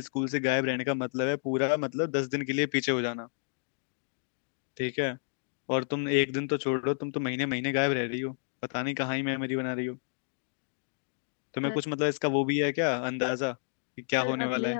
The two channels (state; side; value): silent; right; digital silence